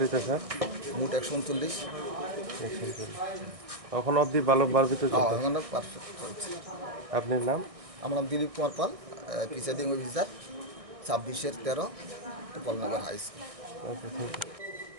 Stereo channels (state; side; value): late; left; 1.6 ms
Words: স্যার? মোট 139। এখন অবধি ভালো বাড়বিতে চলছে? এখন পারফেক্ট চলছে। আপনার নাম? আমার নাম Dilip Kumar Pal, presiding officer 26/13 Gopalnagar high school. Okay, thank you.